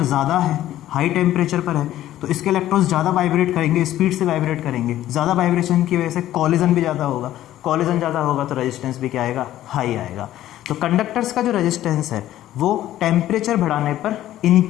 ज़्यादा है, हाई टेम्परेचर पर है, तो इसके इलेक्ट्रॉन्स ज़्यादा वाइब्रेट करेंगे, स्पीड से वाइब्रेट करेंगे। ज़्यादा वाइब्रेशन की वजह से कॉलिजन भी ज़्यादा होगा, कॉलिजन ज़्यादा होगा तो रेजिस्टेंस भी क्या आएगा? हाई आएगा। तो कंडक्टर्स का जो रेजिस्टेंस है वो टेम्परेचर बढ़ाने पर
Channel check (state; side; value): quieter; right; 13.4 dB